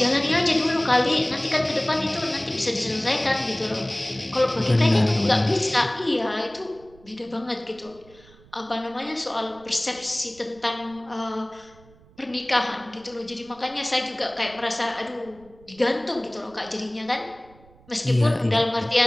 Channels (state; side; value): noise; right; rumble, 26 dB below the sound